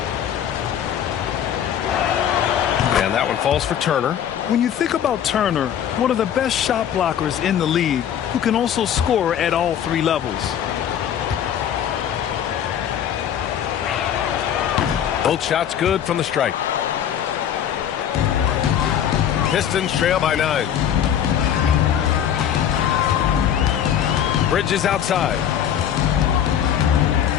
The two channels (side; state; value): right; quieter; 9.6 dB